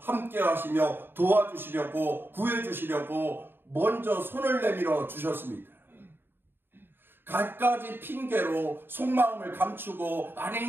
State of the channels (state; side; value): late; left; 0.10 ms